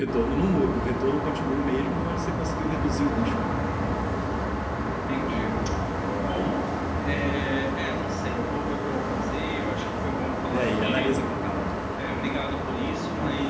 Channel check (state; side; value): identical; both; correlation 1.00